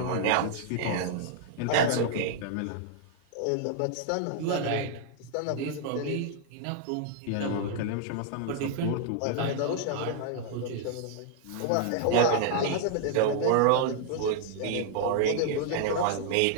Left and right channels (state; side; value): different; both; correlation -0.01